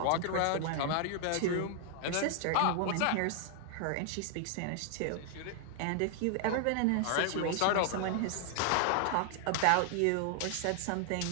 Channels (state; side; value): different; both; correlation 0.00